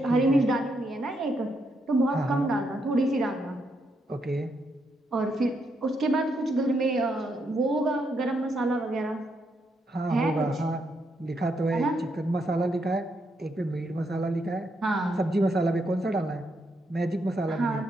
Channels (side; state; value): both; normal; correlation 0.78